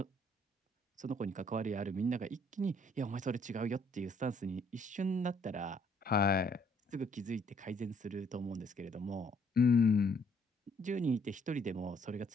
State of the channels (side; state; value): both; normal; correlation 0.65